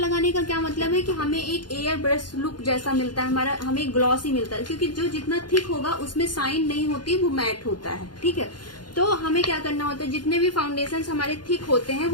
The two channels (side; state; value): right; late; 0.71 ms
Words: का क्या मतलब है कि हमें एक एयर ब्रश लुक जैसा मिलता है, हमारा हमें ग्लॉसी मिलता है, क्योंकि जो जितना थिक होगा उसमें शाइन नहीं होती, वो मैट होता है, ठीक है। तो हमें क्या करना होता है, जितने भी फाउंडेशंस हमारे थिक होते हैं